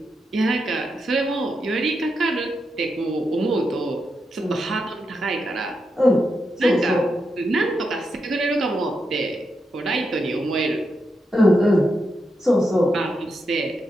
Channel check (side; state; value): both; normal; correlation 0.85